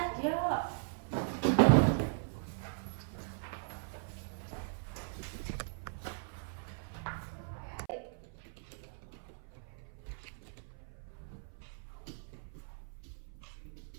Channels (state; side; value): silent; left; 52 dB below the other